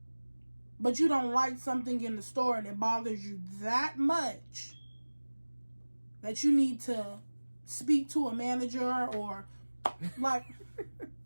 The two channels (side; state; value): both; inverted; correlation -1.00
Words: But you don't like something in the store and it bothers you that much that you need to speak to a manager or like